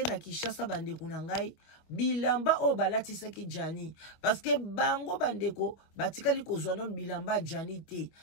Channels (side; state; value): right; late; 25 ms